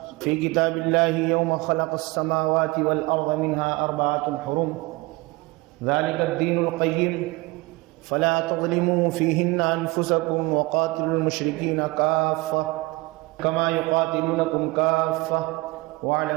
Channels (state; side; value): quieter; left; 22.9 dB